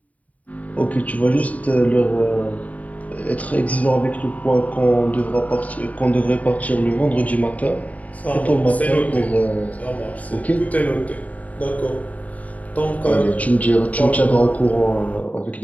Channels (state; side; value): late; right; 0.071 ms